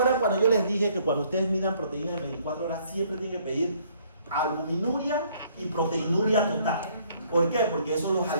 cuando yo les dije que cuando ustedes midan proteínas en 24 horas siempre tienen que pedir albuminuria y proteinuria total? ¿Por qué? Porque eso los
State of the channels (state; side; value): inverted; both; correlation -0.63